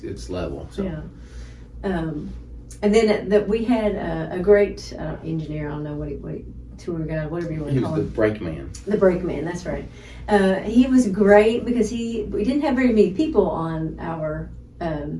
it's level. So. Yeah. And then we had a great engineer. I don't know what tour guide, whatever you want to call him. He was the brakeman. The brakeman, that's right. He was great because we didn't have very many people on our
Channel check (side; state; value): both; identical; correlation 1.00